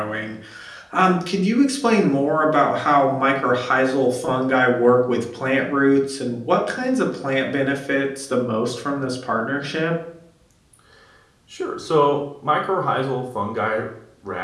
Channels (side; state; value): both; identical; correlation 1.00